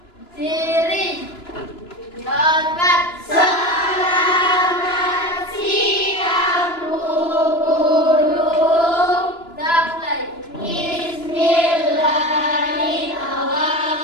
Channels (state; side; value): late; right; 2.9 ms